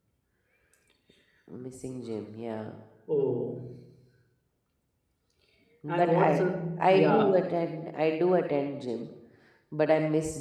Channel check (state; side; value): identical; both; correlation 1.00